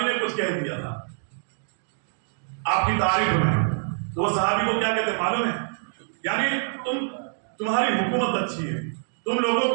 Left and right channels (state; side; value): silent; left; digital silence